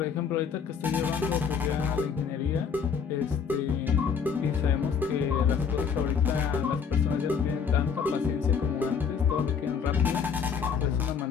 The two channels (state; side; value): quieter; right; 6.4 dB